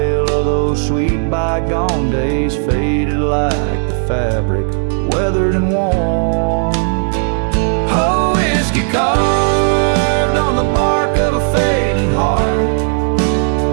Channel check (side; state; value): left; silent; digital silence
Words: of those sweet bygone days, faded like the fabric, weathered and worn. Oh, whiskey carved on the bark of a fading heart.